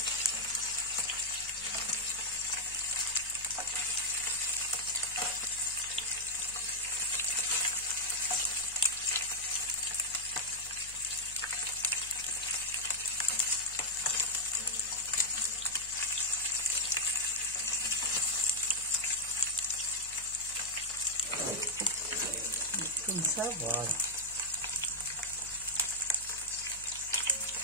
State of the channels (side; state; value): left; noise; hum, 20 dB below the sound